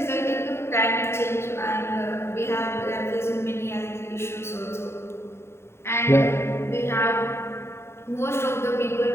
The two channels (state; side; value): late; right; 0.12 ms